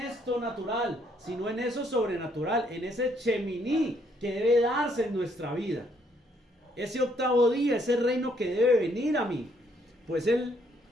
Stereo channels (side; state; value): both; normal; correlation 0.69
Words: natural, sino en eso sobrenatural, en ese cheminí que debe darse en nuestra vida, ese octavo día, ese reino que debe venir a mí. Pues él,